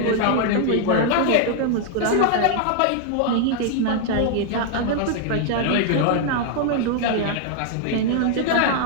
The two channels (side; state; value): both; different; correlation 0.00